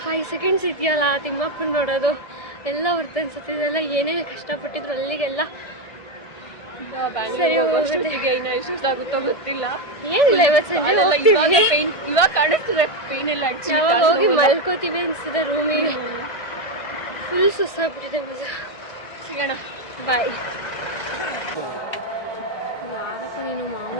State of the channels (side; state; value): right; late; 1.7 ms